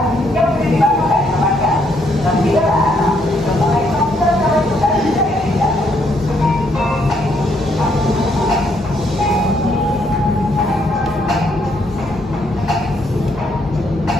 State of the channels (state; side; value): normal; both; correlation 0.72